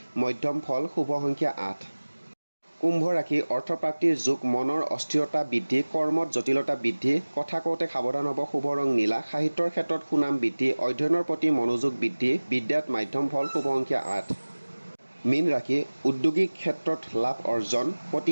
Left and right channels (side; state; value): both; inverted; correlation -1.00